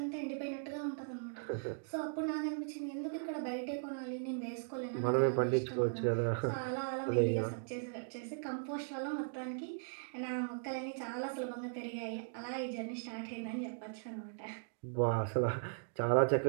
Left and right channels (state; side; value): silent; left; digital silence